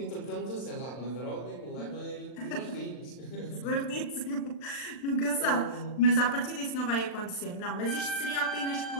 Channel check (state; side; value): late; right; 40 ms